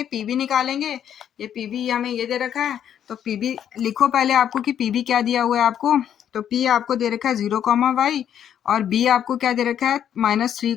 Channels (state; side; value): quieter; right; 9.6 dB